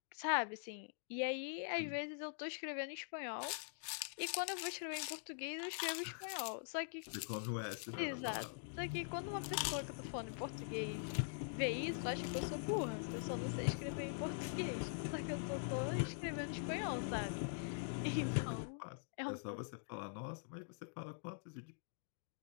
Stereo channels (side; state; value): right; silent; digital silence